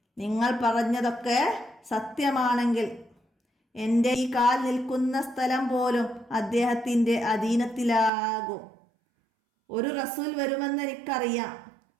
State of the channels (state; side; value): drops out; left; at 8.1 s